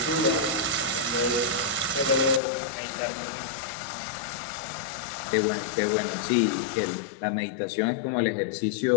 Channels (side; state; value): right; drops out; at 2.4 s